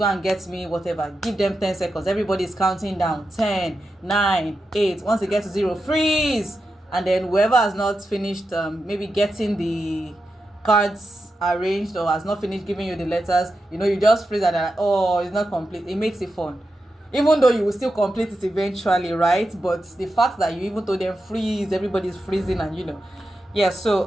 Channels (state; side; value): normal; both; correlation 0.89